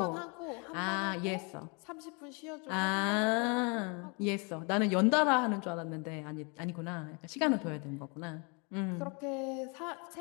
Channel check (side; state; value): right; quieter; 33.1 dB